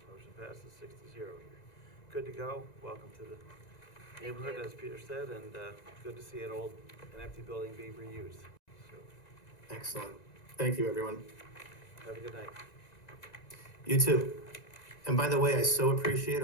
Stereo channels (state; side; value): late; right; 1.9 ms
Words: Motion passes 6-0 here. Good to go. Welcome to the neighborhood, as Peter said, and good to see an empty building being reused. So, Excellent. Thank you, everyone. have a good night. You too. And by the way, I so appreciate